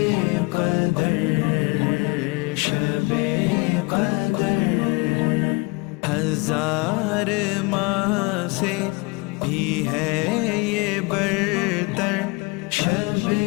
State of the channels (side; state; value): right; quieter; 26.9 dB